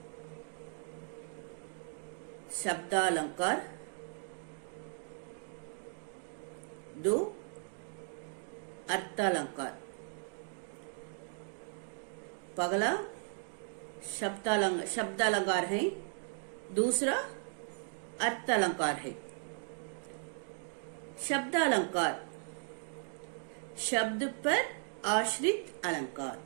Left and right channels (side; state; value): left; silent; 53 dB below the other